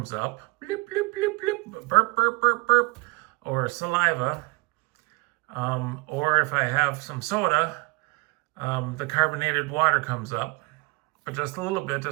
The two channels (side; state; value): left; quieter; 25.2 dB